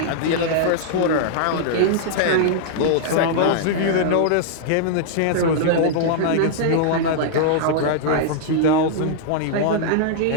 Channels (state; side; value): different; both; correlation -0.01